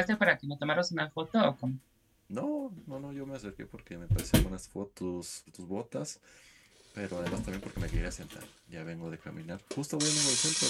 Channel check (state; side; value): identical; both; correlation 1.00